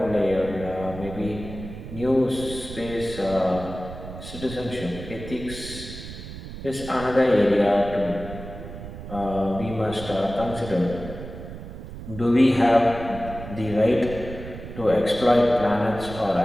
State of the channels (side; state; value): right; noise; rumble, 11 dB below the sound